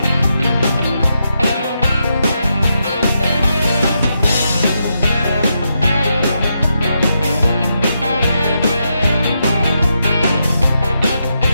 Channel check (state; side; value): inverted; both; correlation -0.84